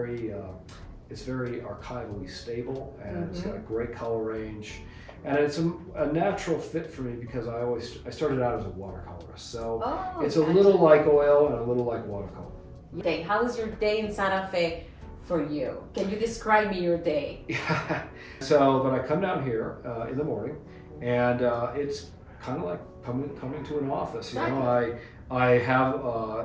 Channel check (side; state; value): both; identical; correlation 1.00